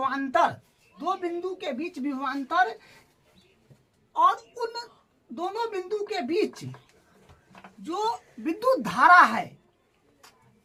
और उन दोनों बिंदु के बीच जो विद्युत धारा है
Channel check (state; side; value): identical; both; correlation 1.00